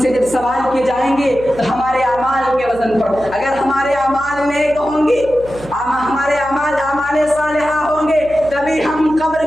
سے جب سوال کیے جائیں گے تو ہمارے اعمال کے وزن پر, اگر ہمارے اعمال نیک ہوں گے, ہمارے اعمال صالحہ ہوں گے, تبھی ہم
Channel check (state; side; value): noise; right; hum, 17 dB below the sound